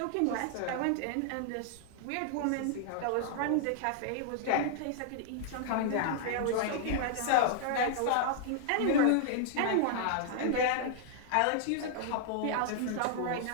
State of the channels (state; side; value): different; both; correlation -0.01